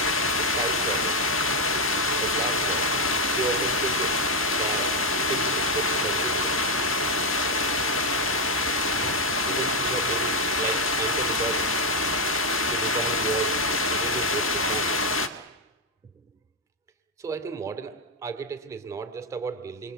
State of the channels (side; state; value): both; normal; correlation 0.04